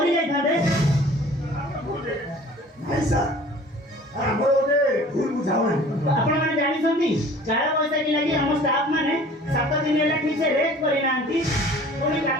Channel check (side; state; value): both; normal; correlation 0.48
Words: ଯାଇଥାନ୍ତେ ନାଇଁ ସାର୍ ଆମର ଗୋଟେ ଭୁଲ ବୁଝାମଣା ଆପଣମାନେ ଜାଣିଛନ୍ତି କାଳ ବୈଶାଖୀ ଲାଗି ଆମ ଷ୍ଟାଫ ମାନେ 7 ଦିନ ହେଲା ଠିକ ସେ ରେଷ୍ଟ କରିନାହାନ୍ତି ପୁଣି